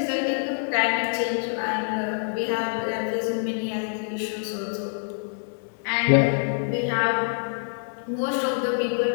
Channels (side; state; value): right; silent; 61 dB below the other